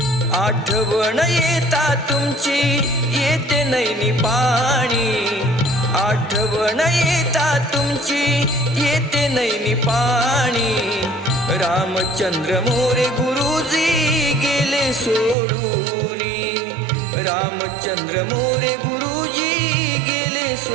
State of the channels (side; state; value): left; drops out; at 15.4 s